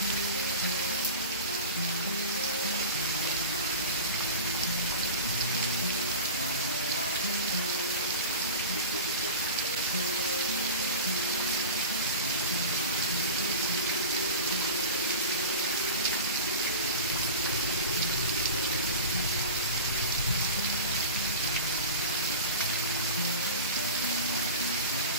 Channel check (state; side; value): inverted; both; correlation -0.30